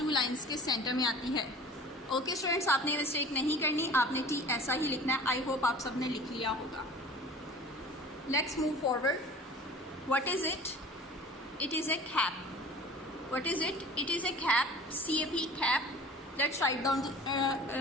2 लाइन्स के सेंटर में आती है. ओके स्टूडेंट्स, आपने मिस्टेक नहीं करनी. आपने टी ऐसा ही लिखना है. आई होप आप सबने लिख लिया होगा. Let's move forward. What is it? It is a cap. What is it? It is a cap. CAP, cap. Let's write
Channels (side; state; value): both; normal; correlation 0.42